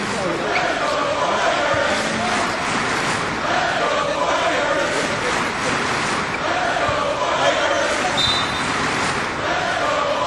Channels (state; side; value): identical; both; correlation 1.00